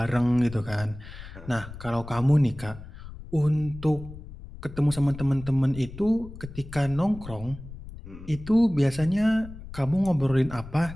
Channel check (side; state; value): left; noise; rumble, 14 dB below the sound